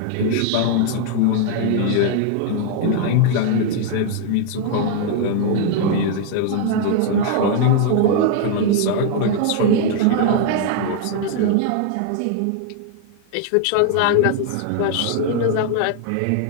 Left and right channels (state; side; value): different; both; correlation 0.00